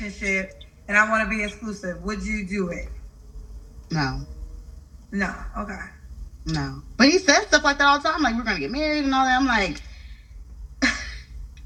and I want to be exclusive," would you do it? No, No. Okay. no. But he says stuff like that all the time, like we're gonna get married and all that. I'm like,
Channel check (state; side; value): identical; both; correlation 1.00